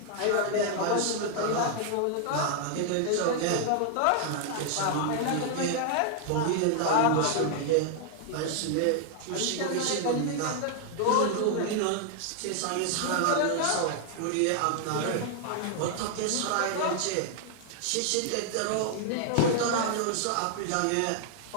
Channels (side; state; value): both; different; correlation 0.00